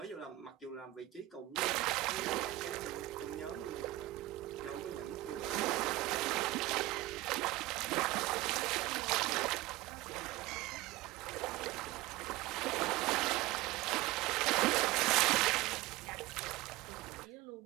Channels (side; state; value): left; quieter; 17.9 dB